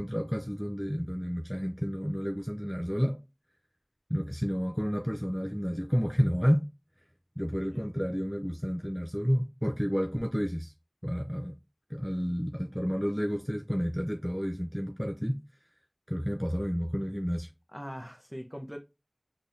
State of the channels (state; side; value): identical; both; correlation 1.00